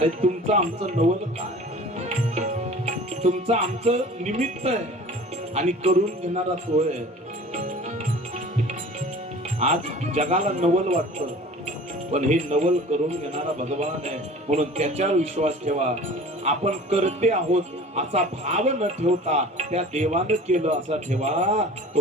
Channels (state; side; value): normal; both; correlation 0.43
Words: तुमचं आमचं नवल काय? तुमचं आमचं निमित्त आहे आणि करून घेणारा तो आहे. आज जगाला नवल वाटतं, पण हे नवल करून घेणारा भगवान आहे, म्हणून त्याच्यावर विश्वास ठेवा. आपण करते आहोत असा भाव न ठेवता त्या देवानं केलं असा ठेवा, तो